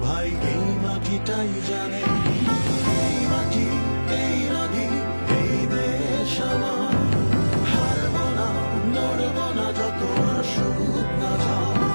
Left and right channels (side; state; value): both; inverted; correlation -1.00